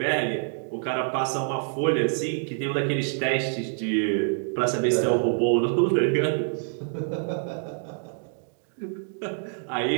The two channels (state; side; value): silent; left; digital silence